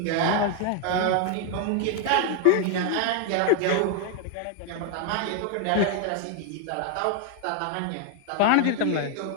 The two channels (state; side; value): different; both; correlation 0.01